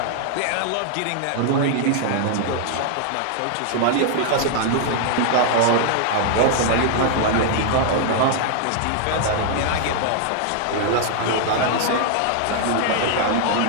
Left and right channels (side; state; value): both; different; correlation 0.00